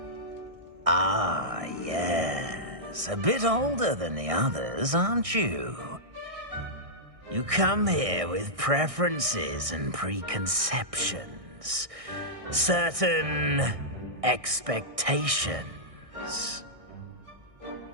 Ah, yes. A bit older than the others, aren't you? You come here with preferences and preconceptions. Certain expectations.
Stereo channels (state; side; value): late; left; 1.6 ms